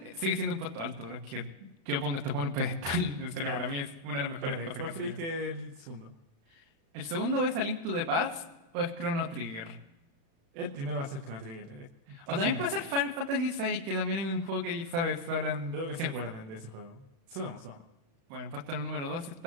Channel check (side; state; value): left; late; 36 ms